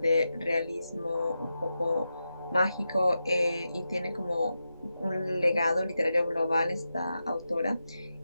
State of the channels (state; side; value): inverted; both; correlation -0.89